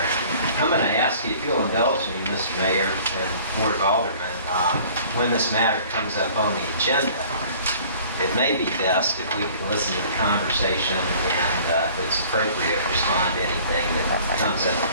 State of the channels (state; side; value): inverted; both; correlation -0.50